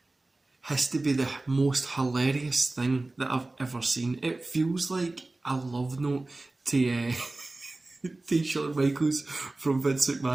has to be the most hilarious thing that I've ever seen. It feels like a love note to to Shawn Michaels from Vince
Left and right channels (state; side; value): quieter; left; 3.0 dB